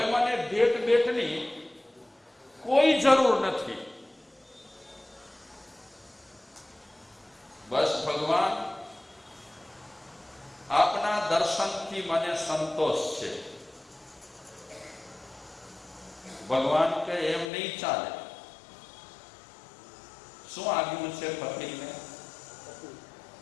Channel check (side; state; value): right; drops out; at 17.5 s